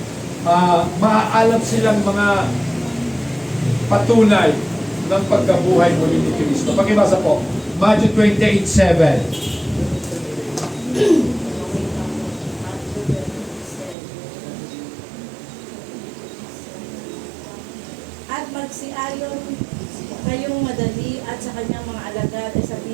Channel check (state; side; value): drops out; left; at 14.0 s